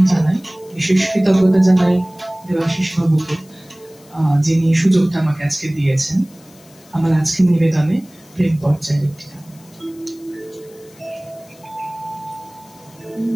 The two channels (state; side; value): noise; left; hiss, 26 dB below the sound